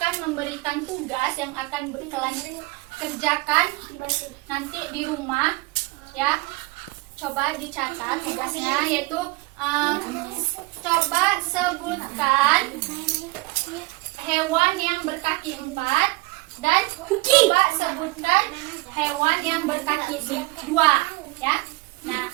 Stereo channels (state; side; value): quieter; left; 24.0 dB